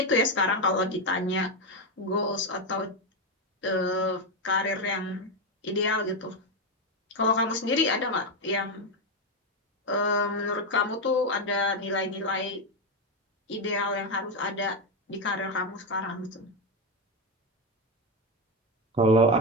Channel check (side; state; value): both; normal; correlation 0.08